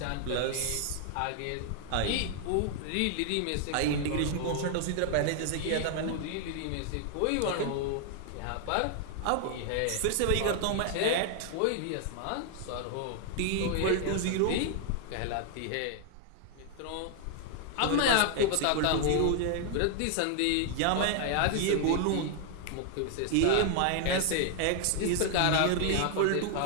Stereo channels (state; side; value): different; both; correlation 0.00